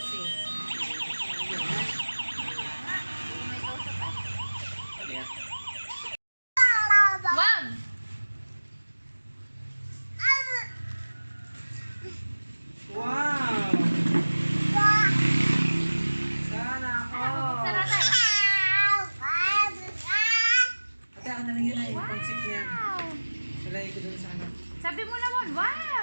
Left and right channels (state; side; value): inverted; both; correlation -1.00